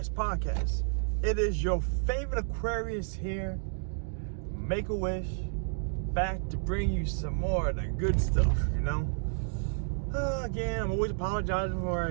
podcast. It is your favorite Aquarius here, Make-A-Wish, back to bring you some more of the good stuff, Again, I'm always apologizing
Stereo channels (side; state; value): left; silent; digital silence